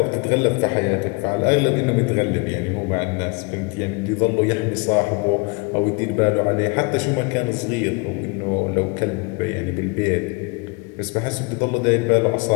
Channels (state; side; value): quieter; right; 29.7 dB